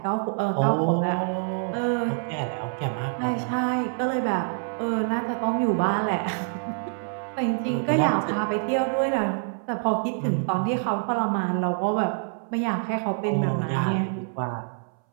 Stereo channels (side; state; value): left; silent; 61 dB below the other